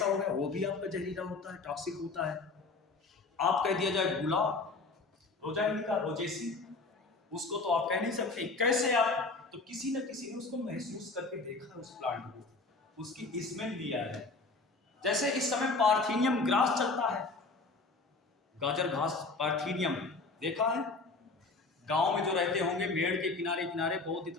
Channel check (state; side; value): quieter; right; 3.7 dB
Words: हो गया, वो भी आपका जहरीला होता है, टॉक्सिक होता है। आप कह दिया जाए गुलाब, रोजा इंडिका, रोजेसी, उसको तो आप कह नहीं सकते। कैसे आप, तो किसी न किसी ने उसको महसूस करके देखा है, उस प्लांट को, उसकी स्मेल लिया है। जैसे इस समय पार्थेनियम ग्रास चलता है, गाजर घास, पार्थेनियम देखा है, गांव में जो रहते होंगे मेड़ के किनारे किनारे बहुत